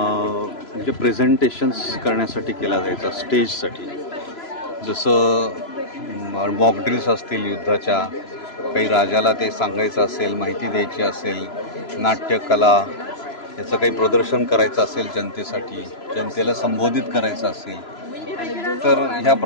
प्रेझेंटेशन्स करण्यासाठी केला जायचा, स्टेजसाठी। जसं मॉक ड्रिल्स असतील युद्धाच्या, काही राजाला ते सांगायचं असेल, माहिती द्यायची असेल, नाट्यकला याचं काही प्रदर्शन करायचं असेल जनतेसाठी, जनतेला संबोधित करायचं असेल, तर ह्या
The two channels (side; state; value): right; late; 3.0 ms